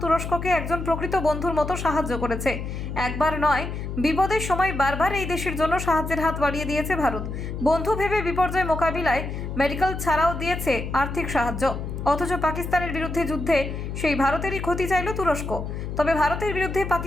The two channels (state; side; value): noise; left; hum, 6 dB below the sound